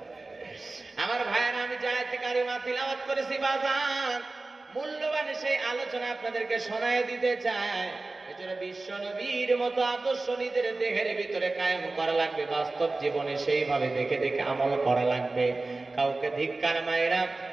আমার ভাইয়েরা, আমি যে আয়াতে কারিমা তিলাওয়াত করেছি বাজান, মূল্যবান সেই আলোচনা আপনাদেরকে শোনায় দিতে চাই। এজন্য বিশ্ব নবীর মতো আদর্শ নিজের দেহের ভিতরে কায়েম করা লাগবে, বাস্তব জীবনে সেইভাবে দেখে দেখে আমল করা লাগবে। কাউকে ধিক্কার মাইরা,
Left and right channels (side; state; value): left; quieter; 3.3 dB